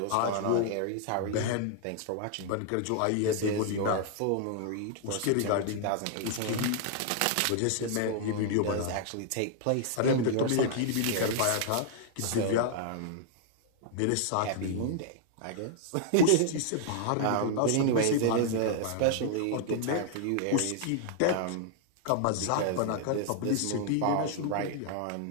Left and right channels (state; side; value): different; both; correlation -0.01